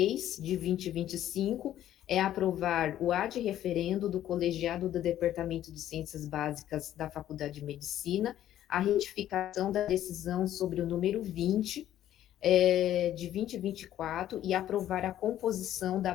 de 2025 é aprovar o ad referendo do colegiado do Departamento de Ciências Básicas da Faculdade de Medicina, a retificação da decisão sobre o número 20 de 2024 e aprovar a composição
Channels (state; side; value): quieter; right; 12.2 dB